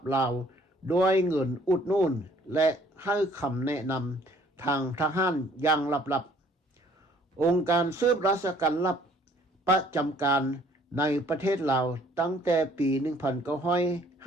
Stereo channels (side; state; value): both; normal; correlation 0.59